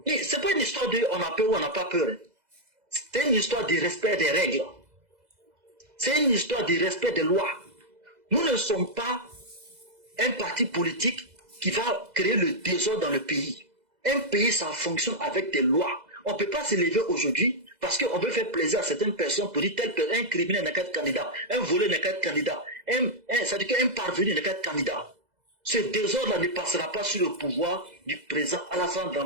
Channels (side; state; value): left; late; 2.0 ms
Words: Ce n'est pas une histoire de on a peur ou on n'a pas peur. C'est une histoire de respect des règles. C'est une histoire de respect des lois. Nous ne sommes pas un parti politique qui va créer le désordre dans le pays. Un pays, ça fonctionne avec des lois. On ne peut pas se lever aujourd'hui parce qu'on veut faire plaisir à certaines personnes pour dire un criminel n'est qu'un candidat, un voleur n'est qu'un candidat, ça dit qu'un parvenu n'est qu'un candidat. Ce désordre-là ne passera pas sur le pouvoir du président Alassane